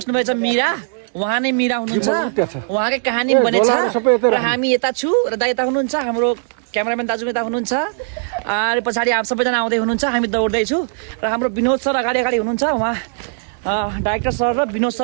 मीरा। उहाँ नै मीरा हुनुहुन्छ, उहाँकै कहानी बनेछ र हामी यता छु र दा यता हुनुहुन्छ, हाम्रो क्यामेराम्यान दाजु यता हुनुहुन्छ र पछाडि आप सबैजना आउँदै हुनुहुन्छ। हामी दौड्दैछु र हाम्रो विनोद सर अगाडि हुनुहुन्छ। उहाँ डाइरेक्टर सर र विनोद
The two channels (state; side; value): silent; left; digital silence